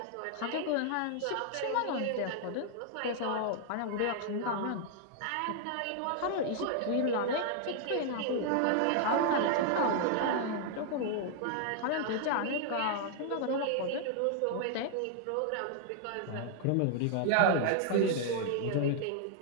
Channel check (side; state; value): both; different; correlation 0.00